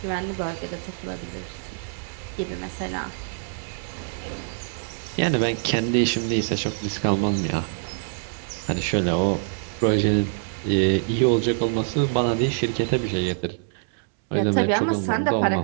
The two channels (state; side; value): silent; left; 62 dB below the other